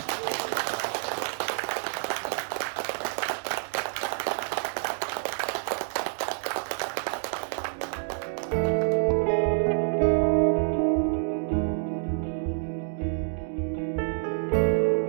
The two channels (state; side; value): silent; left; digital silence